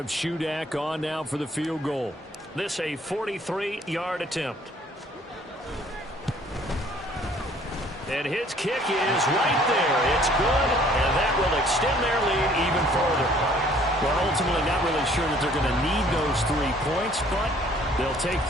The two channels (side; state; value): both; normal; correlation 0.58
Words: Shudak on now for the field goal. This a 43-yard attempt. And his kick is right there. It's good, and that will extend their Well, ultimately not really sure that they're going to need those 3 points, but they'll take